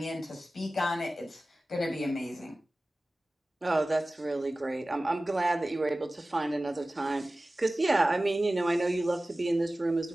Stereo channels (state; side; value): normal; both; correlation 0.97